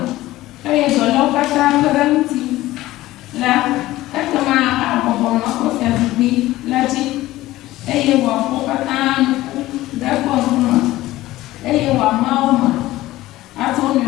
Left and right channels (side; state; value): right; quieter; 16.6 dB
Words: Kaya dolo kata garanti. La kama abo no ko fiabi lati. Eye wa ko kata da ko no. Eye wa mauma. Ato ni